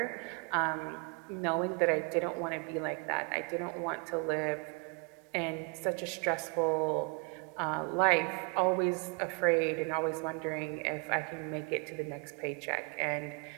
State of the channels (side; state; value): left; quieter; 34.2 dB